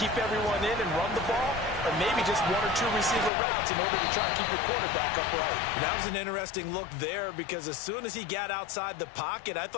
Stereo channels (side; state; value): right; drops out; at 3.3 s